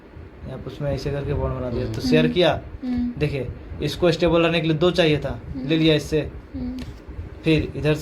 आप उसमें ऐसे करके बॉन्ड बना दिया, तो शेयर किया। देखिए, इसको स्टेबल रहने के लिए 2 चाहिए था, ले लिया इससे। फिर इधर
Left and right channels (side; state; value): both; identical; correlation 1.00